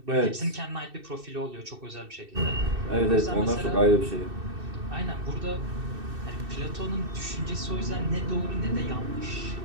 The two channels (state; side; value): late; left; 2.6 ms